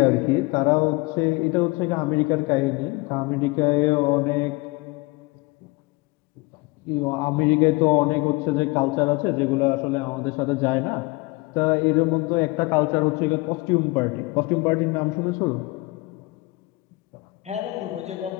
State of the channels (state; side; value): quieter; right; 23.9 dB